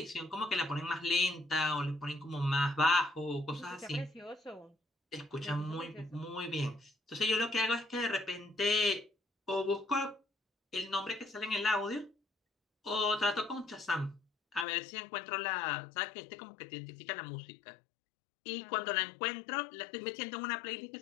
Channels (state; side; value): drops out; right; at 14.7 s